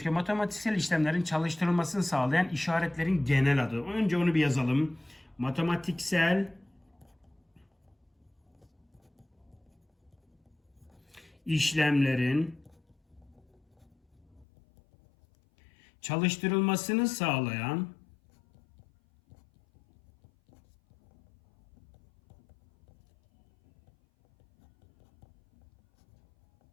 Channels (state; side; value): drops out; right; at 14.5 s